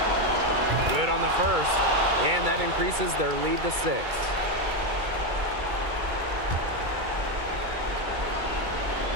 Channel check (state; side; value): late; left; 2.3 ms